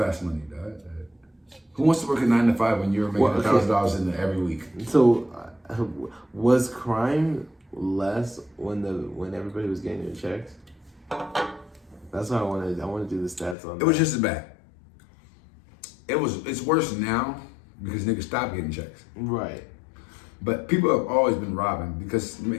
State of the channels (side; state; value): right; drops out; at 13.6 s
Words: money. Dog. Who wants to work a 9 to 5 when you're making $1,000 in there every week? So, was crime less when everybody was getting their checks? That's what I wanted. I want to do the stats on. It was just as bad. It's worse now because niggas stopped getting checks. Right. But people have always been robbing because